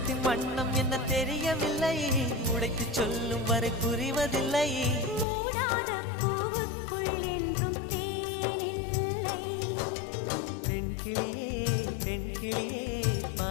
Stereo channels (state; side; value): drops out; right; at 5.2 s